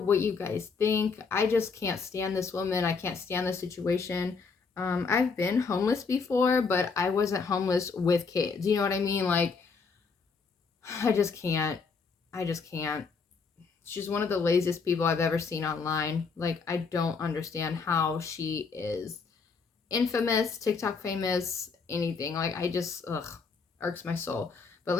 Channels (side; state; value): right; quieter; 5.0 dB